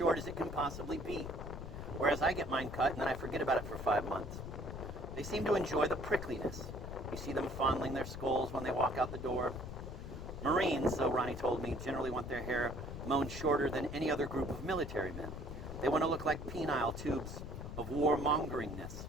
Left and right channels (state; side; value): noise; left; rumble, 8 dB below the sound